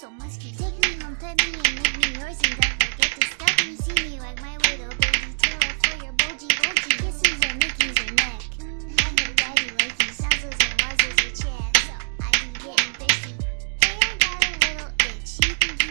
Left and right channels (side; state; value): left; silent; digital silence